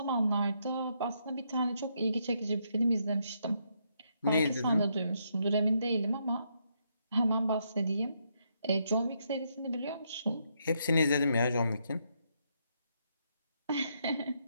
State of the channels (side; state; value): both; inverted; correlation -0.77